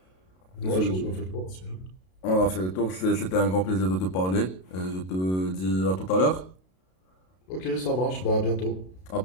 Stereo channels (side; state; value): right; late; 32 ms